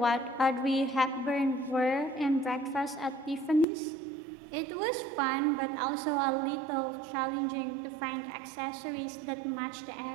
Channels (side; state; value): left; drops out; at 3.7 s